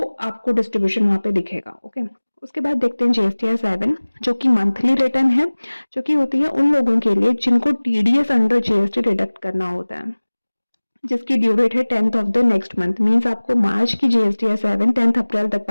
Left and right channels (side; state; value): both; inverted; correlation -1.00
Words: आपको डिस्ट्रीब्यूशन वहां पे दिखेगा। ओके, उसके बाद देखते हैं GSTR 7 जो कि मंथली रिटर्न है, जो कि होती है उन लोगों के लिए जिनको TDS अंडर GST डिडक्ट करना होता है, जिसकी ड्यू डेट है 10th of the next month. Means आपको मार्च की GSTR 7 10th अप्रैल तक